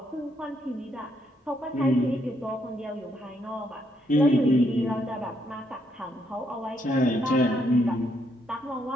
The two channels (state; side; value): normal; both; correlation 0.74